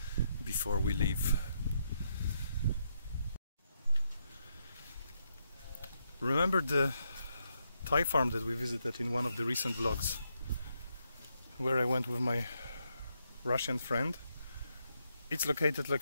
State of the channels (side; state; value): both; inverted; correlation -0.79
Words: before we leave. Remember the Thai farm that we visited in one of the recent vlogs, where I went with my Russian friend? It's located